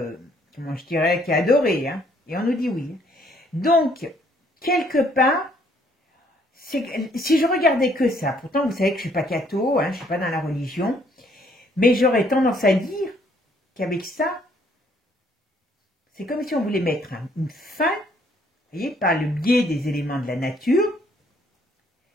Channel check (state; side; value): normal; both; correlation 0.65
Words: comment je dirais, qui est adoré. Hein, et on nous dit oui. Donc, quelque part, si je regardais que ça, pourtant vous savez que je ne suis pas catho, hein, je ne suis pas dans la religion, mais j'aurais tendance à dire qu'avec ça, c'est comme si on voulait mettre une fin, vous voyez, par le biais des éléments de la nature,